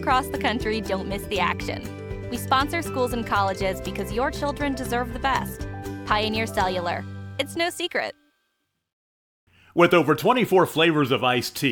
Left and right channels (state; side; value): identical; both; correlation 1.00